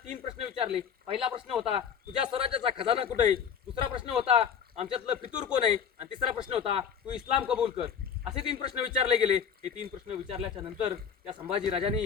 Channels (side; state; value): right; quieter; 7.4 dB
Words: 3 प्रश्न विचारले. पहिला प्रश्न होता, तुझ्या स्वराज्याचा खजाना कुठे आहे? दुसरा प्रश्न होता, आमच्यातलं फितूर कोण आहे? आणि तिसरा प्रश्न होता, तू इस्लाम कबूल कर. असे 3 प्रश्न विचारले गेले. हे 3 प्रश्न विचारल्याच्या नंतर त्या संभाजी